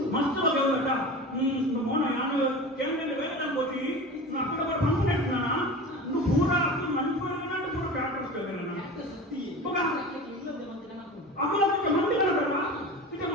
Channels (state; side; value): normal; both; correlation 0.33